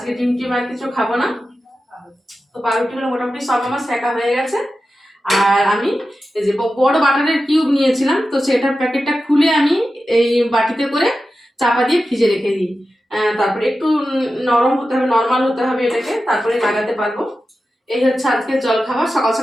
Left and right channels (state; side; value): normal; both; correlation 0.92